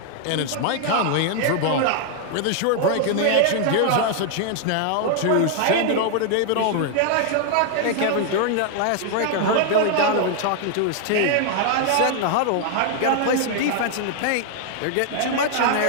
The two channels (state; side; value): different; both; correlation 0.00